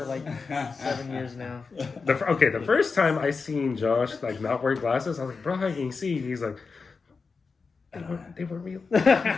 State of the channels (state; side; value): quieter; right; 4.7 dB